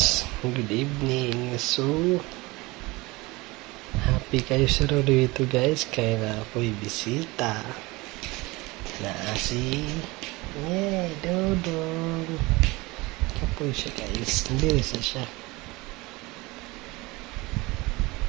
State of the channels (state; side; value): quieter; left; 22.7 dB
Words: good evening. So, happy kayo sa dito guys, kaya na ako'y bisita na si Dodong. Kapoy siya guys, hindi rin siya.